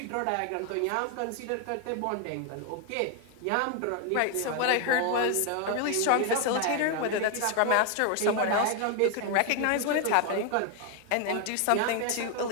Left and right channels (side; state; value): both; different; correlation 0.01